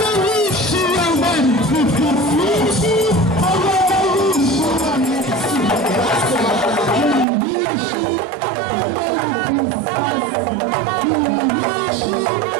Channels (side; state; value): left; drops out; at 7.2 s